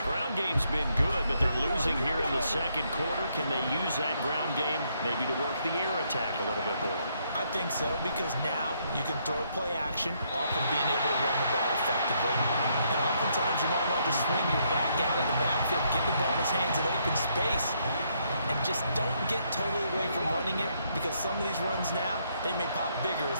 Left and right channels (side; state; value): both; inverted; correlation -0.73